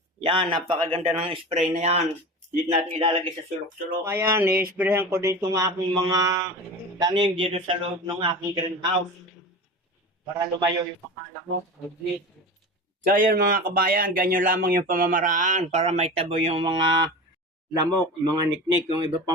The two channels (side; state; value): both; normal; correlation 0.31